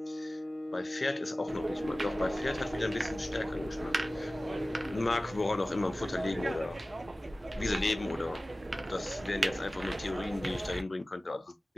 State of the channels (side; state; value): both; normal; correlation 0.97